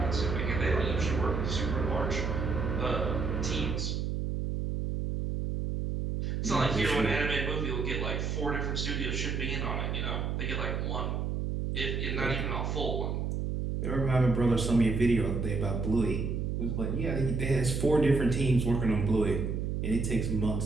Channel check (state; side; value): noise; right; hum, 1 dB below the sound